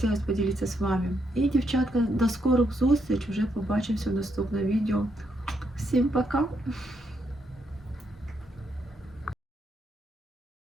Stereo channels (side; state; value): both; normal; correlation 0.77